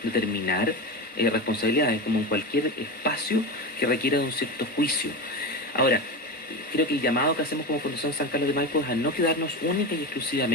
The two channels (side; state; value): both; normal; correlation 0.21